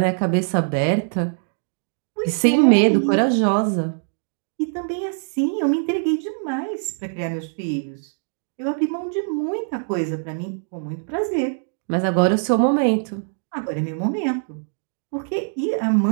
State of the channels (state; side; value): silent; left; digital silence